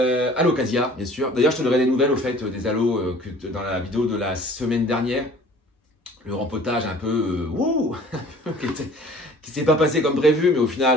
bien sûr. D'ailleurs, je te donnerai des nouvelles au fait des aloes dans la vidéo de la semaine dernière. Le rempotage un peu qui s'est pas passé comme prévu, mais au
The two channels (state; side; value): normal; both; correlation 0.49